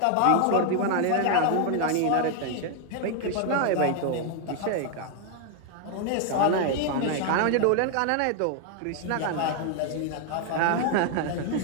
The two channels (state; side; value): different; both; correlation 0.00